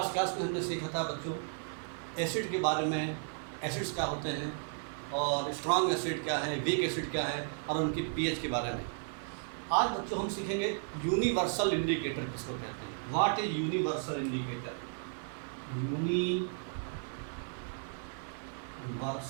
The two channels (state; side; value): silent; left; 55 dB below the other